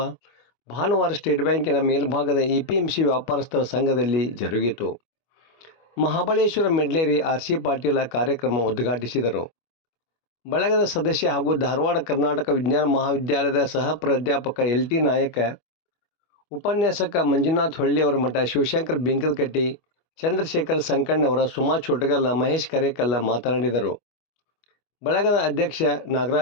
ಭಾನುವಾರ ಸ್ಟೇಟ್ ಬ್ಯಾಂಕಿನ ಮೇಲ್ಭಾಗದ APMC ವ್ಯಾಪಾರಸ್ಥರ ಸಂಘದಲ್ಲಿ ಜರುಗಿತು. ಮಹಾಬಳೇಶ್ವರ ಮೆಡ್ಲೇರಿ RC ಪಾಟೀಲ ಕಾರ್ಯಕ್ರಮ ಉದ್ಘಾಟಿಸಿದರು. ಬಳಗದ ಸದಸ್ಯ ಹಾಗೂ ಧಾರವಾಡ ಕರ್ನಾಟಕ ವಿಜ್ಞಾನ ಮಹಾವಿದ್ಯಾಲಯದ ಸಹ ಪ್ರಾಧ್ಯಾಪಕ LT ನಾಯಕ, ಉಪನ್ಯಾಸಕ ಮಂಜುನಾಥ್ ಹೊಳ್ಳಿಯವರ ಮಠ, ಶಿವಶಂಕರ್ ಬಿಂಕದಕಟ್ಟಿ, ಚಂದ್ರಶೇಖರ್ ಸಂಕಣ್ಣವರ, ಸುಮಾ ಚೋಟಗಲ್ಲ, ಮಹೇಶ್ ಕರೇಕಲ್ಲ ಮಾತನಾಡಿದರು. ಬಳಗದ ಅಧ್ಯಕ್ಷ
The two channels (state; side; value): late; right; 25 ms